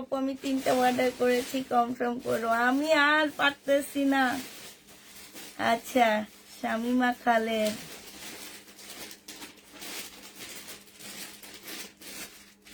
আমি 3টা অর্ডার করেছি, কনফার্ম করো, আমি আর পারতেছি না। আচ্ছা, শামিমা খালেদ,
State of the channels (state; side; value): identical; both; correlation 1.00